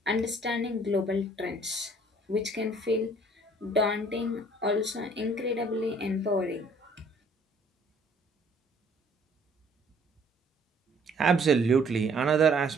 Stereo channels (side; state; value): both; normal; correlation 0.58